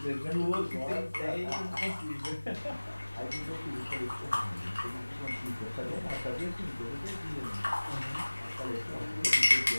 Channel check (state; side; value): inverted; both; correlation -1.00